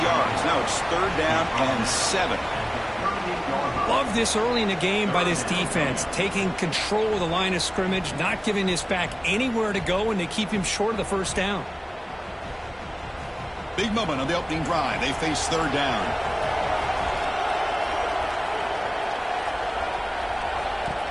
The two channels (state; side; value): identical; both; correlation 1.00